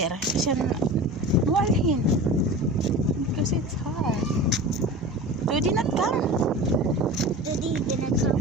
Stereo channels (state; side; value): normal; both; correlation 0.33